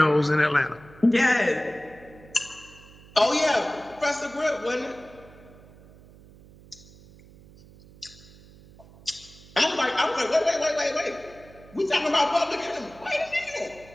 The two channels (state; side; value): noise; right; hum, 23 dB below the sound